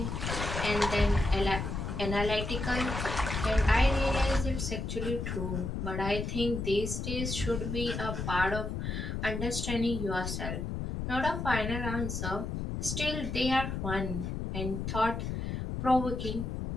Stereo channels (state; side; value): noise; left; rumble, 3 dB below the sound